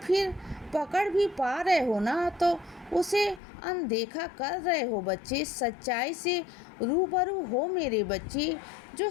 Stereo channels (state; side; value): drops out; right; at 3.4 s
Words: पकड़ भी पा रहे हो ना तो उसे अनदेखा कर रहे हो बच्चे। सच्चाई से रूबरू हो मेरे बच्चे। जो